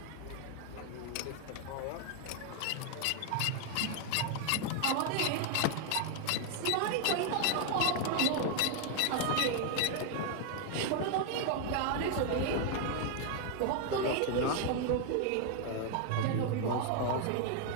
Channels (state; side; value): different; both; correlation 0.00